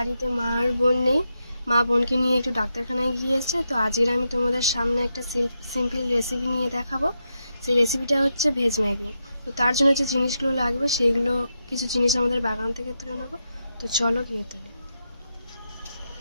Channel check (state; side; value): inverted; both; correlation -0.85